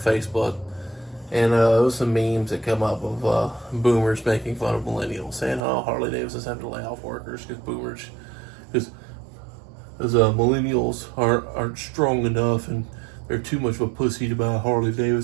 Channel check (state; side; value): drops out; left; at 5.6 s